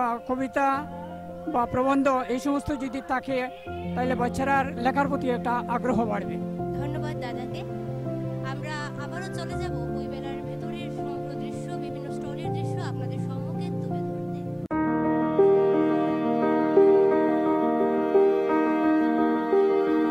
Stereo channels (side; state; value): both; identical; correlation 1.00